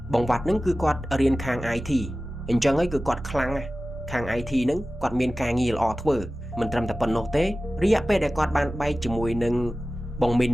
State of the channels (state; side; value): normal; both; correlation 0.95